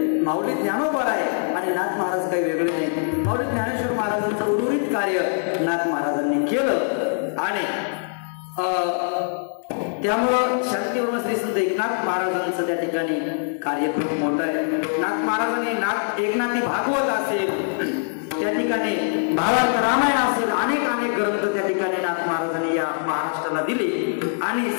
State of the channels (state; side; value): silent; right; 63 dB below the other